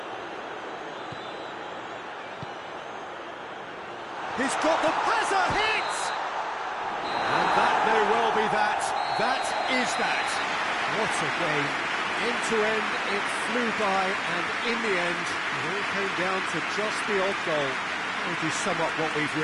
He's got the has a hit! And that may well be that. That is that. What a game. End to end, it flew by, and in the end, it all came down to just the odd goal. How would you sum up what we've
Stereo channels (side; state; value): both; identical; correlation 1.00